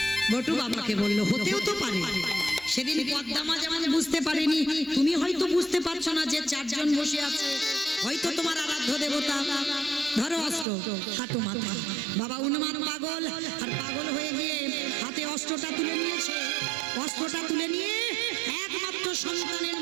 বটু বাবাকে বললো। হতেও তো পারে, সেদিন পদ্মা মা যেমন বুঝতে পারেনি, তুমি হয়তো বুঝতে পারছো না যে চারজন বসে আছে, হয়তো তোমার আরাধ্য দেবতা। ধরো অস্ত্র, কাটো মাথা। বাবা উন্মাদ পাগল, আর পাগল হয়ে গিয়ে হাতে অস্ত্রটা তুলে নিয়েছে। অস্ত্রটা তুলে নিয়ে একমাত্র সন্তানের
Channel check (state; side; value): drops out; left; at 10.7 s